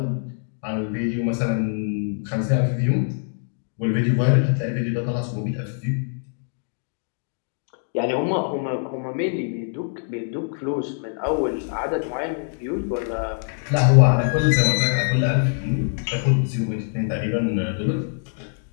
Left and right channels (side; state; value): right; silent; digital silence